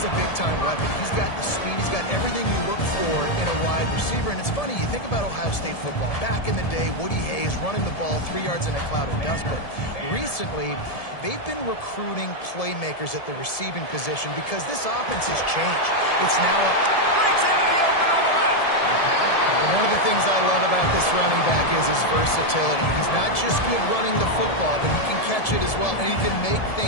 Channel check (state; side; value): late; right; 1.7 ms